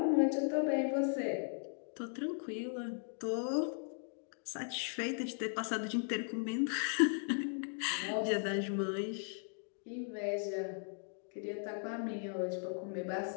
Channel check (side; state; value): right; silent; 53 dB below the other